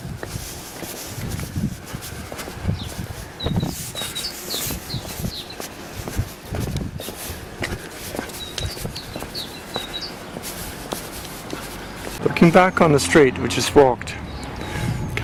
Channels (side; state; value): both; identical; correlation 1.00